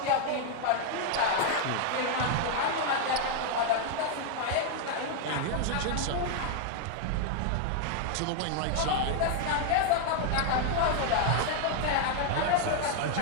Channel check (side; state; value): both; different; correlation 0.00